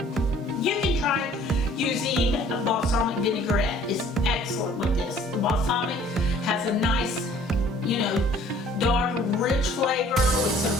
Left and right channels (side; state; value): both; normal; correlation 0.55